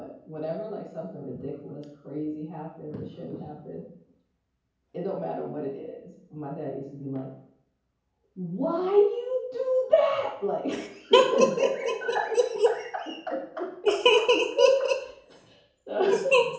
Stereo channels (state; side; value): identical; both; correlation 1.00